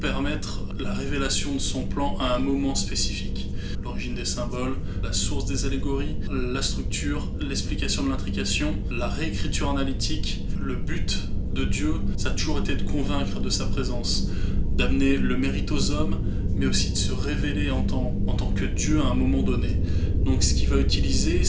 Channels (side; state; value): both; identical; correlation 1.00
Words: la révélation de son plan à un moment spécifique. L'origine des symboles, la source des allégories, la structure, l'explication de l'intrication, la réécriture analytique. Le but de Dieu, ça a toujours été de convaincre de sa présence, d'amener le mérite aux hommes, mais aussi de se révéler en tant que Dieu à un moment donné. Donc ce qu'il va utiliser,